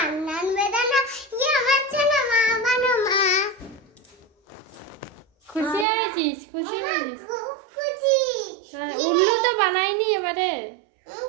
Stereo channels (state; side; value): drops out; left; at 5.9 s